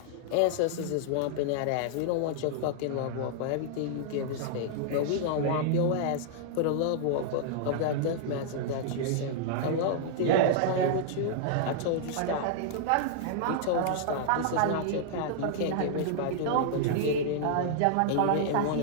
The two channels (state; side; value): different; both; correlation -0.01